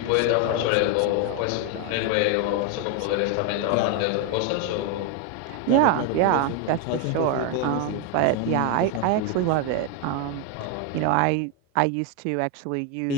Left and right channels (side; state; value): both; different; correlation 0.01